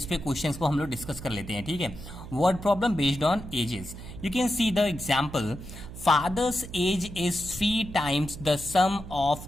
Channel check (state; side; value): noise; right; hum, 12 dB below the sound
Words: पे क्वेश्चंस को हम लोग डिस्कस कर लेते हैं। ठीक है, word problem based on ages. You can see the example. Father's age is 3 times the sum